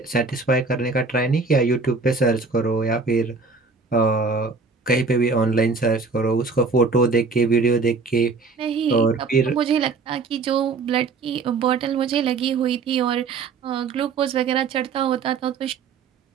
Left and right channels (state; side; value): quieter; left; 4.4 dB